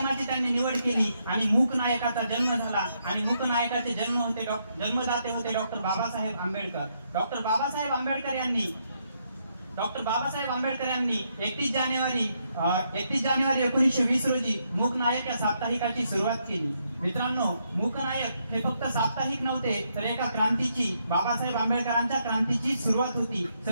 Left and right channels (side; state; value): both; inverted; correlation -0.77